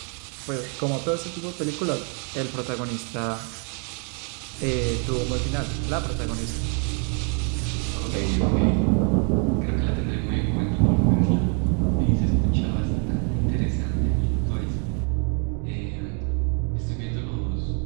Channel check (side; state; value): left; quieter; 39.0 dB